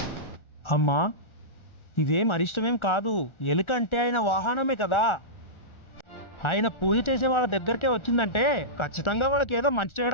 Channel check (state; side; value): late; right; 1.4 ms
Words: అమ్మా ఇదేం అరిష్టమేం కాదు, ఎలుక అంటే ఆయన వాహనమే కదా. ఆయన పూజ చేసే వాళ్ళ దగ్గరకే వచ్చిందంటే ఖచ్చితంగా వాళ్ళకి ఏదో మంచి